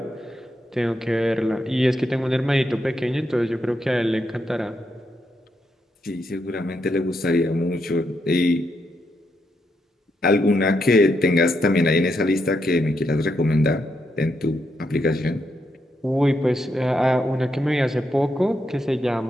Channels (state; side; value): normal; both; correlation 0.81